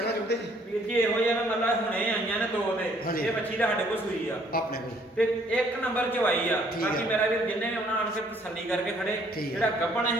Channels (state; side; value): normal; both; correlation 0.63